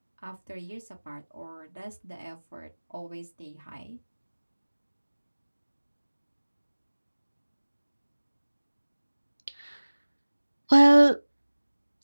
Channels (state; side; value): inverted; both; correlation -1.00